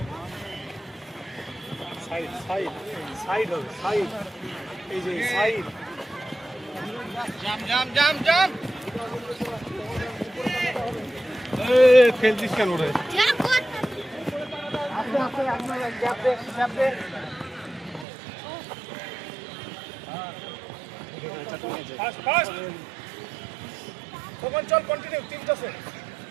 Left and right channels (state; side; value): drops out; left; at 18.1 s